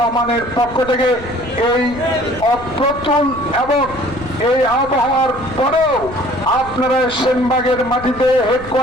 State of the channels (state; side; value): noise; left; rumble, 16 dB below the sound